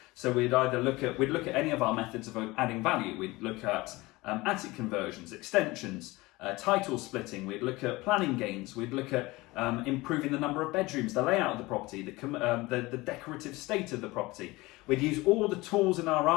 So we'd look at any of our methods of adding value. We'd look at attic conversions, extensions, title splitting. We'd look at planning gains. We'd look at improving the number of bedrooms, the layout of the property, the decorative state of the property. We'd use all the tools in our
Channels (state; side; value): quieter; right; 21.2 dB